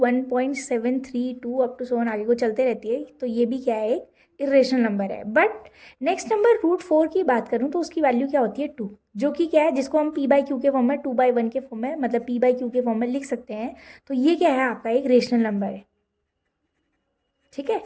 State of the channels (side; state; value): both; identical; correlation 1.00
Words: up to so on आगे को चलते रहती है, तो ये भी क्या है, एक इरेशनल नंबर है। बट नेक्स्ट नंबर √4 की बात करूं तो उसकी वैल्यू क्या होती है, 2, जो कि क्या है, जिसको हम p/q के फॉर्म में 2/1 के फॉर्म में, मतलब p/q के फॉर्म में लिख सकते हैं। तो ये क्या है, आपका एक रेशनल नंबर है। ठीक है,